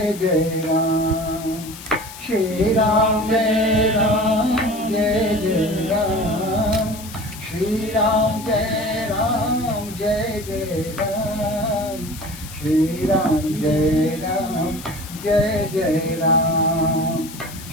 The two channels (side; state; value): left; noise; hiss, 15 dB below the sound